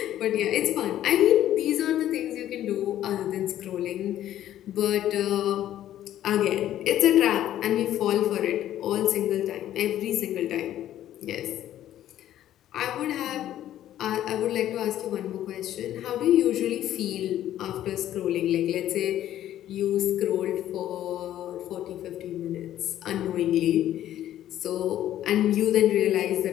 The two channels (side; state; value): right; quieter; 12.3 dB